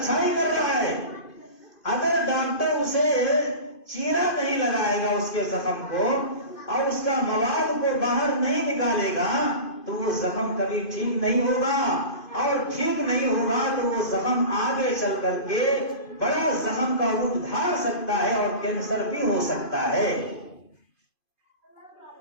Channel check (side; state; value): right; late; 2.5 ms